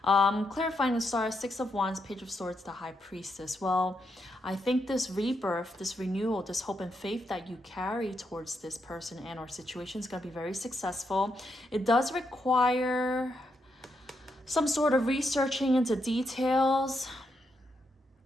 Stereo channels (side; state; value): both; normal; correlation 0.81